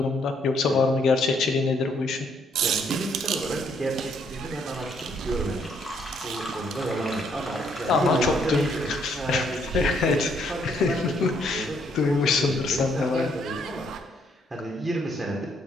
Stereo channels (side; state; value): both; normal; correlation 0.70